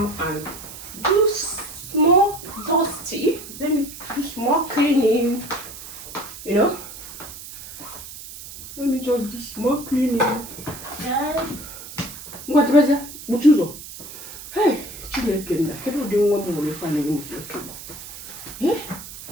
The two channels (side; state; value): right; noise; hiss, 13 dB below the sound